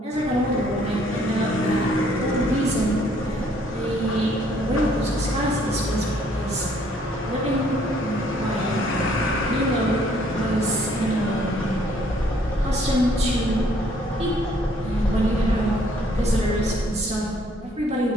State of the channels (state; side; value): normal; both; correlation 0.64